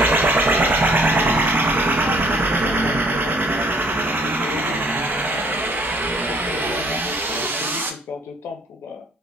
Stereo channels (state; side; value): normal; both; correlation 0.61